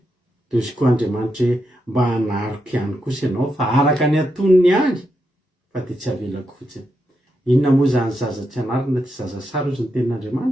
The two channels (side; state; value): both; normal; correlation 0.83